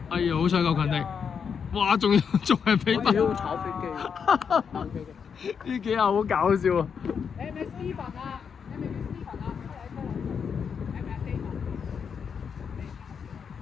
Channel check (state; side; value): quieter; right; 6.7 dB